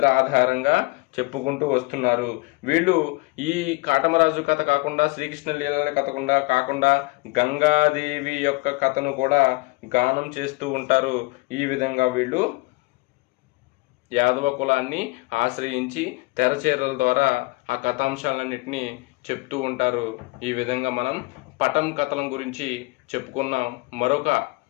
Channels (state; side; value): quieter; right; 24.6 dB